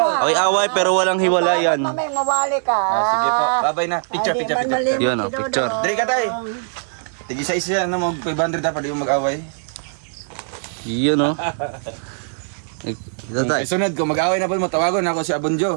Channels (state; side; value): silent; left; digital silence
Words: Away pero walang hiwalayan. Mamay, mawali ka. Sige po. Babay na. Picture. Yun, picture. Dali ka tay. Tig-isa-isa yan na mag 500 dapat di mo mag-away. Yun, no? Sunod ko, mag-away na po mo. Tawagon ako si